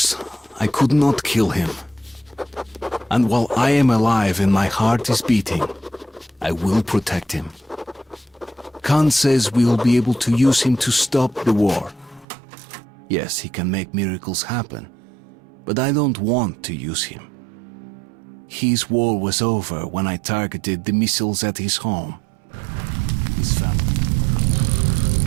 I could not kill him. And while I am alive and my heart is beating, I will protect him. Khan says we will be able to use him to stop the war. Yes, he can make miracles happen, but I don't want to use him. His war was over when I targeted the missiles at his home. His family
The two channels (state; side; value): drops out; left; at 12.2 s